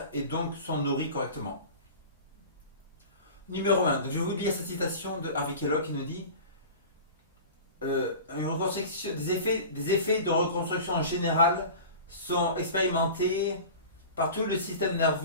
et donc sont nourris correctement. Numéro 1, donc je vais vous lire cette citation de Harvey Kellogg qui nous dit une reconstruction, des effets de reconstruction générale sont expérimentés par tout le système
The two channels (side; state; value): both; inverted; correlation -0.36